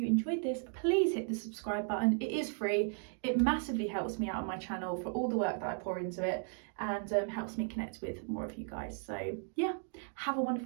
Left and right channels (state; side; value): silent; left; 54 dB below the other